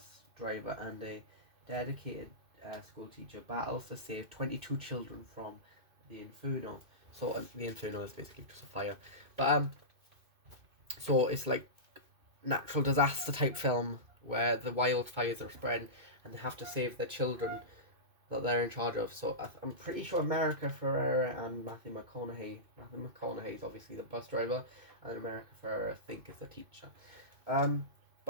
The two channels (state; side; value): late; left; 2.6 ms